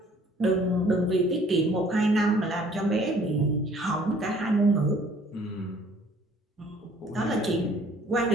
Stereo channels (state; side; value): normal; both; correlation 0.57